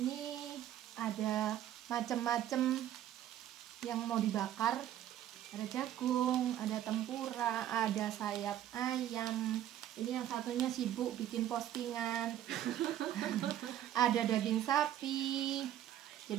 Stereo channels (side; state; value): left; quieter; 11.8 dB